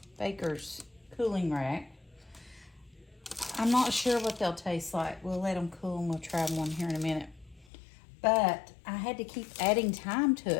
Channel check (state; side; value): drops out; right; at 7.7 s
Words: baker's cooling rack. I'm not sure what they'll taste like. We'll let them cool and we'll try one here in a minute. But I had to keep adding time to